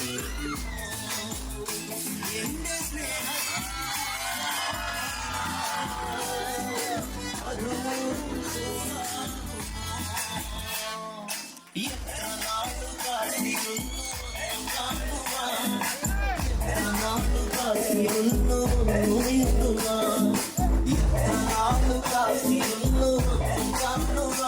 എന്റെ സ്നേഹ എത്ര നാള് കാത്തിരുന്നു കാണുവാൻ, എത്ര നാള് കാത്തിരുന്നു മിണ്ടുവാൻ, എത്ര നാള് കാത്തിരുന്നു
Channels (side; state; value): both; identical; correlation 1.00